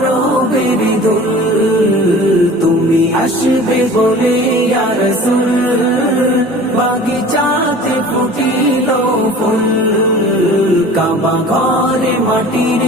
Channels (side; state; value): both; normal; correlation 0.43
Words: ধুল। তুমি আসবে বলে ইয়া রাসূল বাগিচাতে ফুটিল ফুল, কাবা ঘরে মাটির